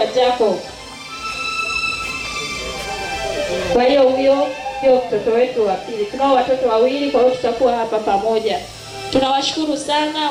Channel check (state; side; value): identical; both; correlation 1.00